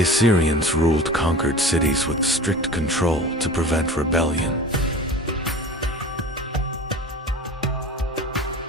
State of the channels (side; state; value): both; normal; correlation 0.37